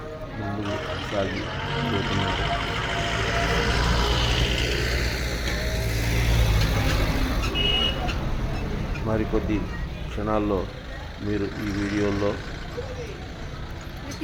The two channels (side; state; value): both; identical; correlation 1.00